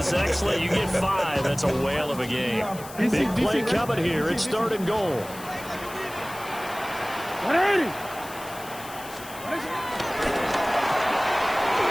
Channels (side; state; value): left; noise; hiss, 16 dB below the sound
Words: excellent. You get 5, that's a whale of a game. Big play coming here. It's 3rd and goal.